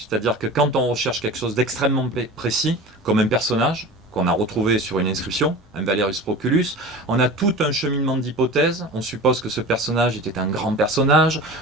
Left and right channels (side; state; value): both; normal; correlation 0.35